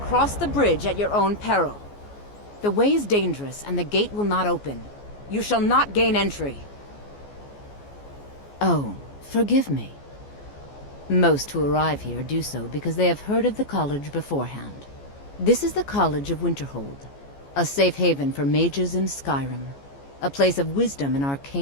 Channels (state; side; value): late; right; 14 ms